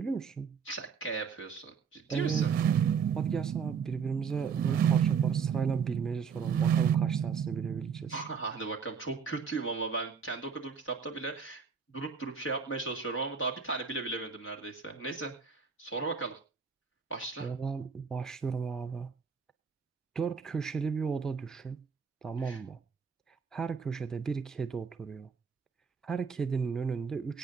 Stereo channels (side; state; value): left; quieter; 6.2 dB